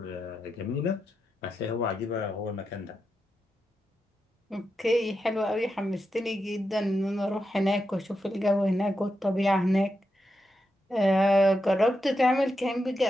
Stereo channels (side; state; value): both; normal; correlation 0.87